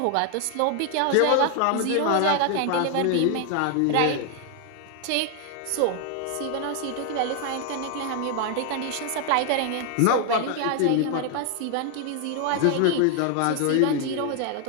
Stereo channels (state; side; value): different; both; correlation 0.00